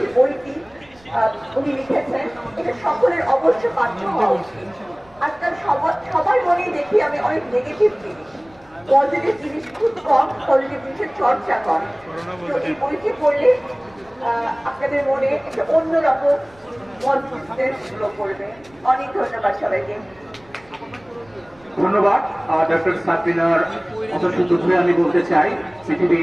যে বইটি উনি লিখেছেন, এটা সকলের অবশ্য পাঠ্য হওয়া উচিত। আজকাল সবার মনে দেখি আমি অনেক নেগেটিভ জিনিস, পজিটিভ জিনিস খুব কম, পজিটিভ জিনিসের চর্চা কম। তো এই বইটি পড়লে আপনাদের মনে একটা অন্যরকম পজিটিভনেস গ্রো করবে। অনেক ধন্যবাদ সবাইকে। ধন্যবাদ ডক্টর সাবরিনার কথা শুধু আমি বলতে চাই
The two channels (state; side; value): noise; right; rumble, 28 dB below the sound